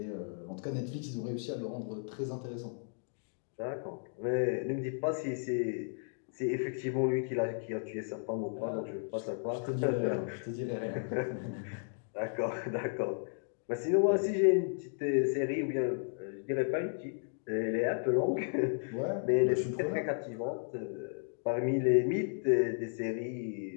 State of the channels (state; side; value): silent; right; digital silence